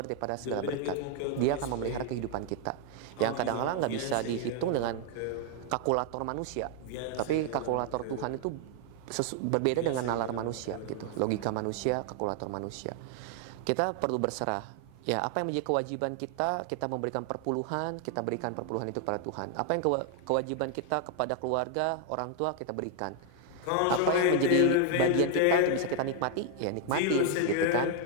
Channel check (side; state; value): both; different; correlation 0.00